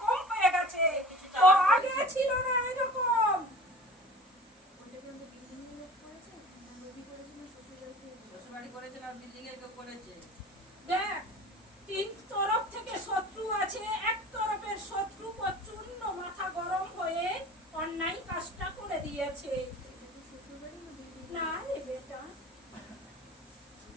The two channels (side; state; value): both; normal; correlation 0.41